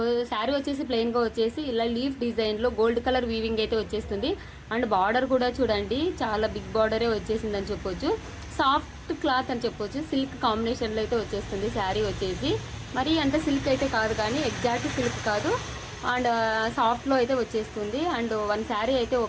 శారీ వచ్చేసి ప్లెయిన్గా వచ్చేసి ఇలా లీఫ్ డిజైన్లో గోల్డ్ కలర్ వీవింగ్ అయితే వచ్చేస్తుంది. అండ్ బార్డర్ కూడా చూడండి, చాలా బిగ్ బార్డరే వచ్చేసిందని చెప్పొచ్చు. సాఫ్ట్ క్లాత్ అని చెప్పొచ్చు, సిల్క్ కాంబినేషన్లో అయితే వచ్చేస్తుంది శారీ వచ్చేసి. మరి అంత సిల్క్ అయితే కాదు, కానీ ఎగ్జాక్ట్ సిల్క్ కాదు, అండ్ సాఫ్ట్లో అయితే వచ్చేస్తుంది. అండ్ వన్ శారీ అయితే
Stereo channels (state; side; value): identical; both; correlation 1.00